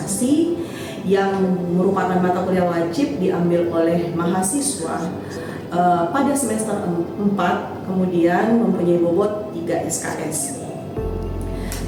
yang merupakan mata kuliah wajib diambil oleh mahasiswa pada semester 4, kemudian mempunyai bobot 3 SKS.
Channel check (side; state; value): both; identical; correlation 1.00